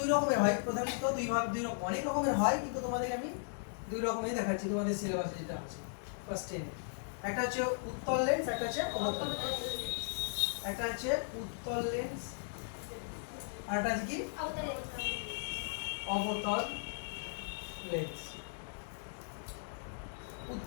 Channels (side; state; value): right; silent; digital silence